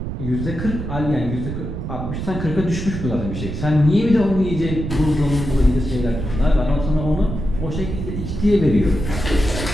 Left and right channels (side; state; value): right; noise; rumble, 5 dB below the sound